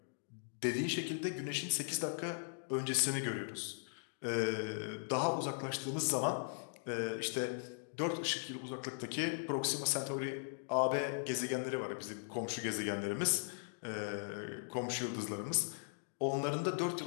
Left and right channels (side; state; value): right; silent; digital silence